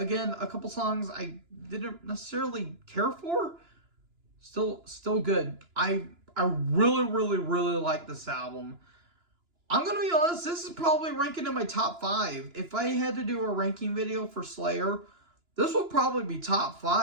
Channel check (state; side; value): late; left; 2.9 ms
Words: a couple songs I didn't necessarily care for. Still good. I really, really, really like this album. I'm going to be honest, this is probably ranking in my top 5. If I had to do a ranking video for Slayer, this will probably be top